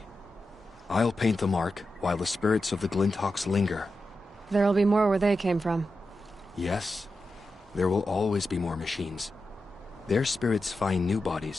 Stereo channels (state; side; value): normal; both; correlation 0.90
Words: I'll paint the mark while the spirits of the Glinthawks linger. There'll be more where they came from. Yes, there will always be more machines. Their spirits find new